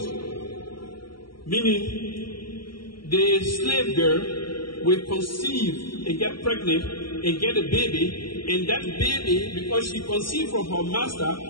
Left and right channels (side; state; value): right; late; 0.74 ms